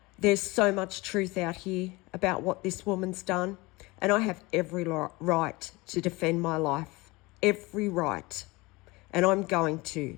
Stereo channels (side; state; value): right; quieter; 23.1 dB